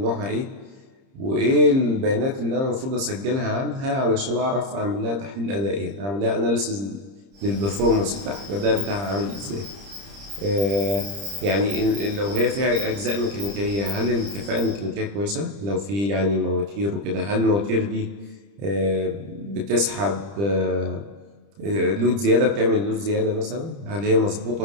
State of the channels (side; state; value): left; late; 30 ms